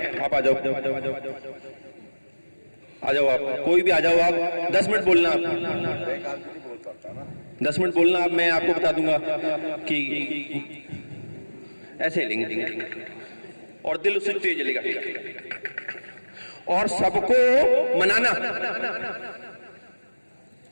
आप आ जाओ, आ जाओ, आप कोई भी आ जाओ, आप 10 मिनट बोलना, आप 10 मिनट बोलना, आप मैं आपको बता दूंगा कि ऐसे हिलेंगे और दिल उससे तेज जलेगा। और सबको मनाना,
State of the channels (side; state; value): both; inverted; correlation -1.00